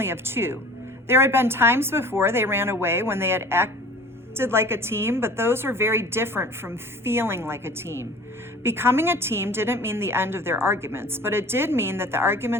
of two. There had been times before they ran away when they had acted like a team, but those were very different from feeling like a team. Becoming a team didn't mean the end of their arguments, but it did mean that the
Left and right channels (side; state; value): both; normal; correlation 0.44